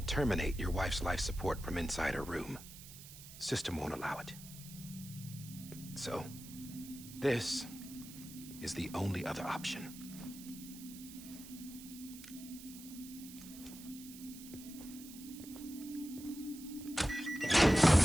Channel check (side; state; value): right; noise; hiss, 15 dB below the sound